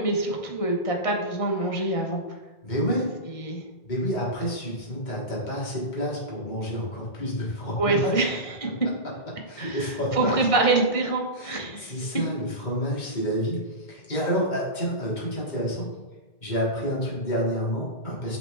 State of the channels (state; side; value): late; right; 2.2 ms